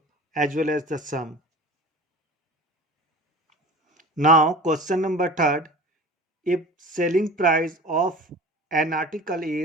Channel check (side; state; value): both; normal; correlation 0.38